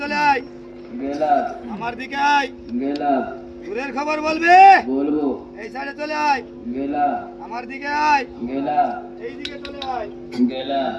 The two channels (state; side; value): identical; both; correlation 1.00